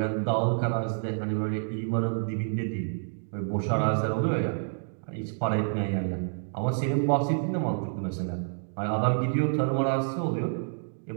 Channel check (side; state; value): left; silent; digital silence